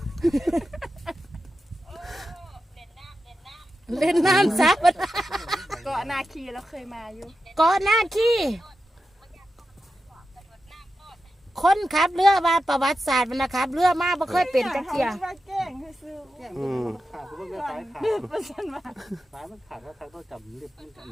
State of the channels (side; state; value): both; normal; correlation 0.91